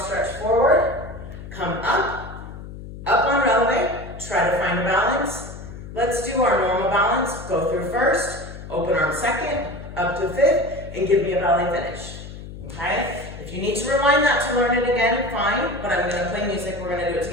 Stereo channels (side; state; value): left; noise; hum, 12 dB below the sound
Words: forward, come up on releve, try to find a balance. Let's do our normal balance. Go through first, open arm second, up to 5th, and give me a ballet finish, okay? If you need to rewind that to learn it again, fine, but I'm gonna play music, we're gonna do it